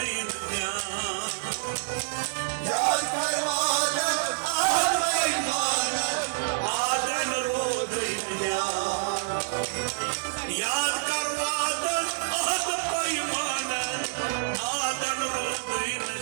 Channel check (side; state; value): left; silent; digital silence